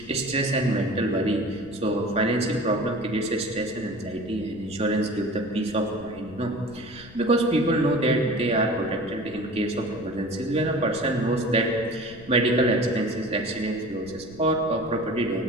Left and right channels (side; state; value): left; noise; rumble, 20 dB below the sound